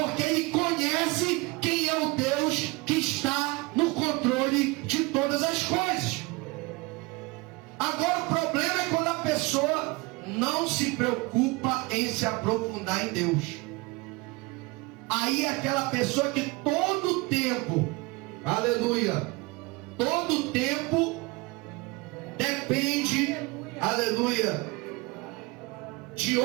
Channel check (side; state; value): left; quieter; 24.5 dB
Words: ele conhece quem é o Deus que está no controle de todas as coisas. Agora o problema é quando a pessoa não se preocupa em se aprofundar em Deus. Aí é aquela pessoa que todo tempo, aleluia, todo tempo depende, aleluia, de